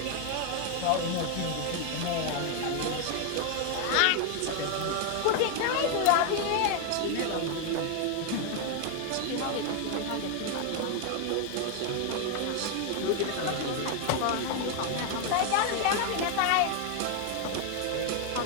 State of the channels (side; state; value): both; different; correlation 0.01